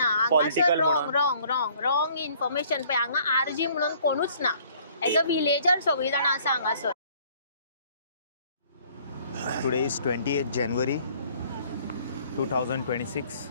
पॉलिटिकल रॉंग म्हणून रॉंग रॉंग रॉंग इन्फॉर्मेशन पळय हांगा आरजी म्हणून कोणूच ना एज अ विलेजर सगळी जाणां आसा हांगासर. Today is 28th January 2026.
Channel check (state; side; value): inverted; both; correlation -0.58